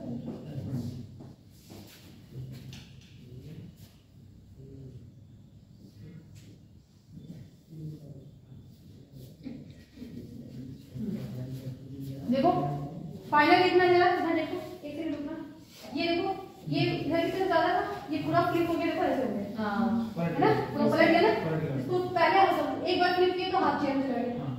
देखो फाइनल कितना जरा इधर देखो, एक सेकंड रुकना। ये देखो, ये इधर की तरफ ज्यादा था, ये पूरा फ्लिप हो गया, देखो ऐसे हो गया। है ना? पूरा पलट गया ना। इसको पहले एक बार फ्लिप किए तो हाथ चेयर में चला गया,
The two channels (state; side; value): identical; both; correlation 1.00